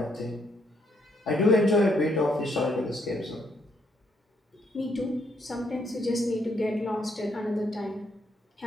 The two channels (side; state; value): both; normal; correlation 0.72